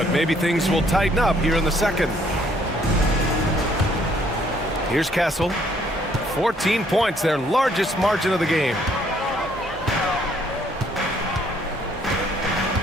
maybe things will tighten up here in the second. Here's Castle. 14 points, their largest margin of the game.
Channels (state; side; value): normal; both; correlation 0.65